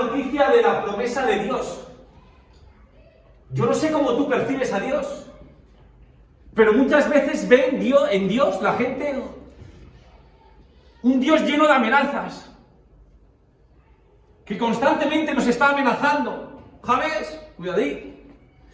de la promesa de Dios. Yo no sé cómo tú percibes a Dios, pero muchas veces ven en Dios la gente un Dios lleno de amenazas, que constantemente nos está amenazando. ¿Sabes?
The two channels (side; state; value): both; identical; correlation 1.00